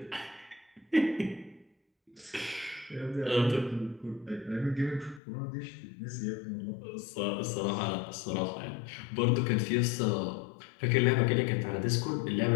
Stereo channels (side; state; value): right; drops out; at 5.2 s